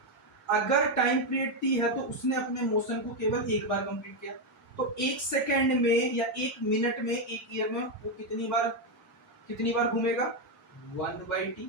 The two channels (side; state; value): both; normal; correlation 0.05